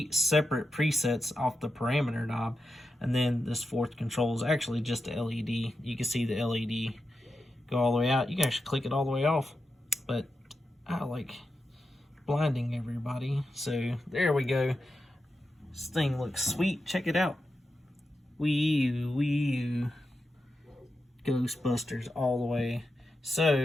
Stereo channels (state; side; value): normal; both; correlation 0.89